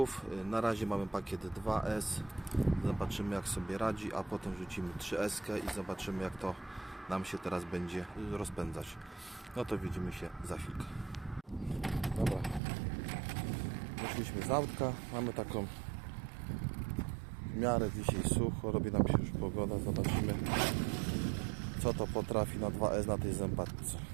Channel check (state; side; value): drops out; left; at 12.6 s